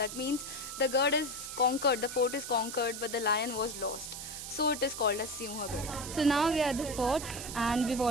means the Gad is conquered, the fort is conquered, but the lion was lost. So it is called as Sinha Gad. So now we are at the fort and we've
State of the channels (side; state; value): right; noise; hiss, 8 dB below the sound